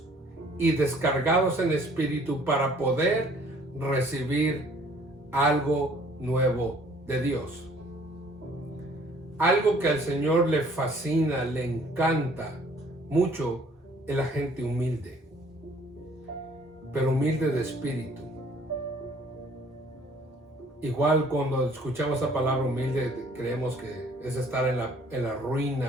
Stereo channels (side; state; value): both; normal; correlation 0.57